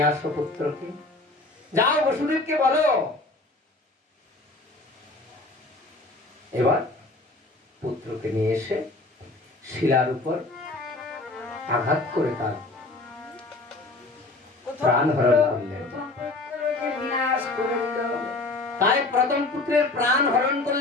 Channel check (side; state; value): right; quieter; 3.1 dB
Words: আসো পুত্রকে, যাও বসুদেবকে বলো। এবার পুত্রকে নিয়ে এসে শিলার উপর আঘাত করে তার প্রাণ হরণ করলেন। তাই প্রথম পুত্রের প্রাণ হরণ